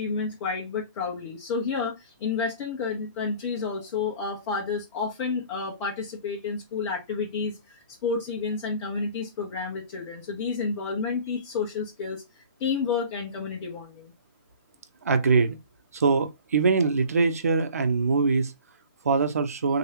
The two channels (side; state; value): both; inverted; correlation -0.48